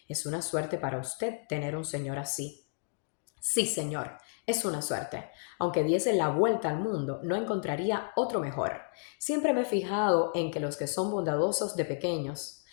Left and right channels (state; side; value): silent; right; digital silence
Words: Es una suerte para usted tener un señor así. Sí, señor, es una suerte. Aunque diese la vuelta al mundo, no encontraría otro mejor. Siempre me he fijado en que los que son bondadosos de pequeños